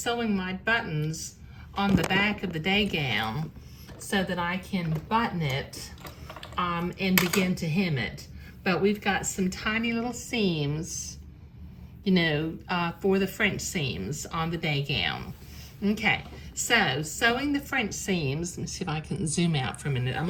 my buttons on the back of the day gown so that I can button it and begin to hem it. But we've got some tiny little seams, for the French seams on the day gown. Okay. So, sewing the French seams, let me see if I can zoom out for a minute. I'm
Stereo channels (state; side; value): identical; both; correlation 1.00